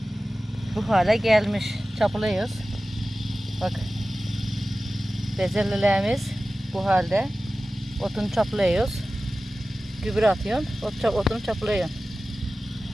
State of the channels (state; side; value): normal; both; correlation 0.96